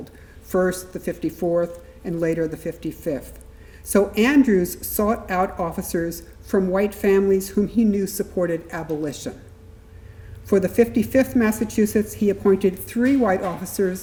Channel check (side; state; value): both; identical; correlation 1.00